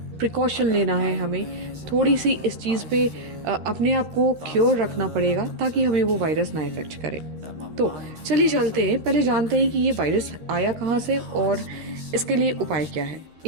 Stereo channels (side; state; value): left; late; 13 ms